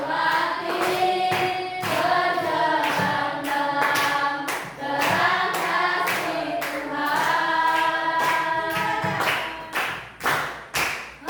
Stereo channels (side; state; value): both; identical; correlation 1.00